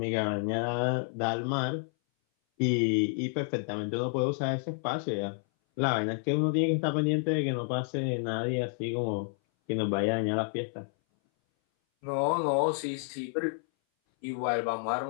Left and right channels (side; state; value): right; silent; 58 dB below the other